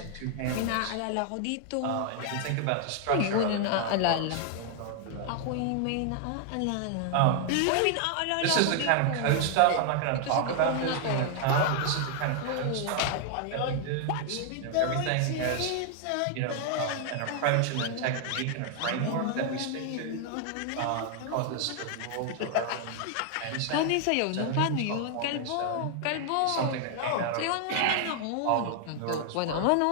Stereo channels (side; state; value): both; different; correlation 0.00